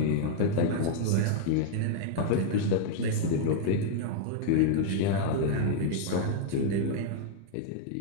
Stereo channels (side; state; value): both; different; correlation -0.01